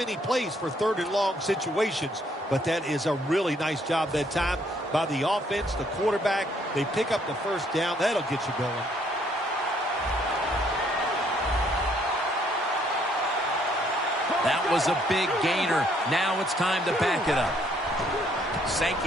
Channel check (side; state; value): both; normal; correlation 0.67